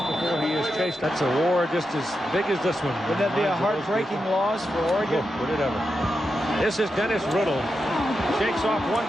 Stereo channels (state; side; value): normal; both; correlation 0.87